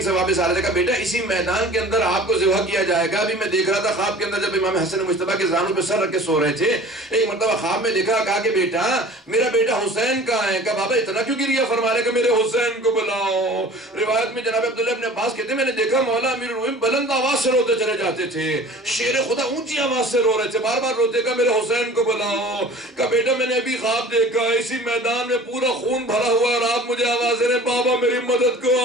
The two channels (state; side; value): normal; both; correlation 0.44